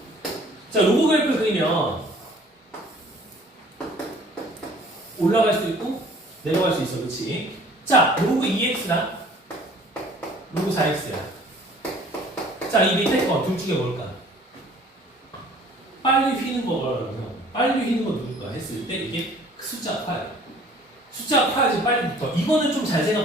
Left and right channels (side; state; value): both; normal; correlation 0.53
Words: 자, 로그 그래프를 그리면 올라갈 수 있고 내려갈 수 있어. 그렇지? 자, 로그 2x나 로그 4x야. 자, 이 밑에 거 둘 중에 뭘까? 빨리 휘는 거라면 빨리 휘는 거 누굴까 했을 때 이게 숫자가 커요. 숫자가 커야지 빨리 붙어. 이거는 좀 잘